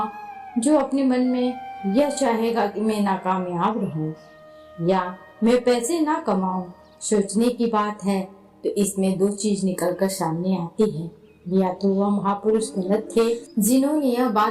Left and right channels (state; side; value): identical; both; correlation 1.00